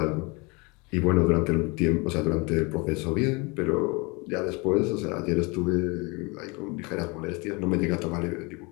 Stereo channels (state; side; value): quieter; right; 28.0 dB